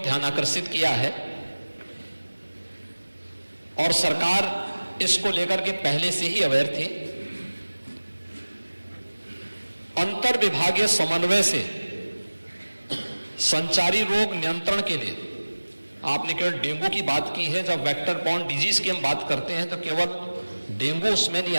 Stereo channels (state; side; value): inverted; both; correlation -1.00